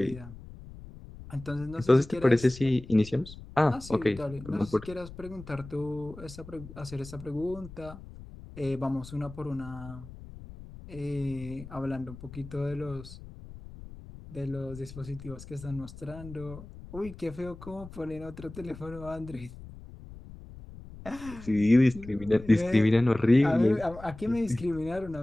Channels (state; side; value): noise; left; rumble, 15 dB below the sound